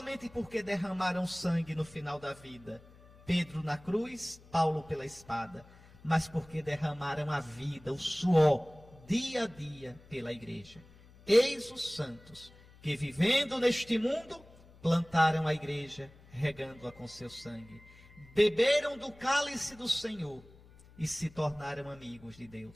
porque derramaram sangue no final da vida, Pedro na cruz, Paulo pela espada, mas porque derramaram a vida, o suor, dia a dia pela igreja. Eis os santos que, vivendo neste mundo, plantaram a igreja, regando-a com seu sangue. Beberam do cálice do Senhor e se tornaram amigos de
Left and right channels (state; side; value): noise; left; hum, 24 dB below the sound